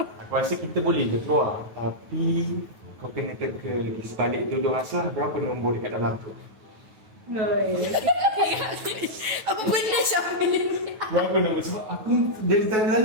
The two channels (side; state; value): left; late; 9.2 ms